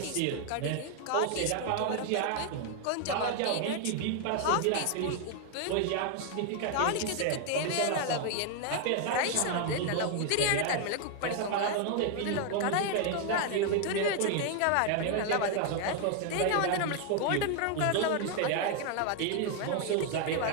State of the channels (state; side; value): different; both; correlation 0.00